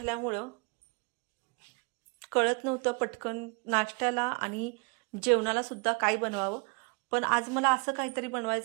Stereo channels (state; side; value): quieter; left; 34.1 dB